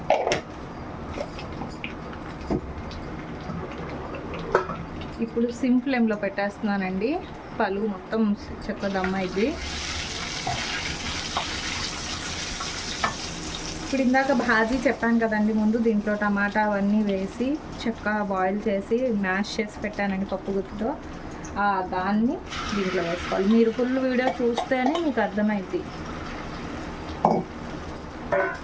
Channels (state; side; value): identical; both; correlation 1.00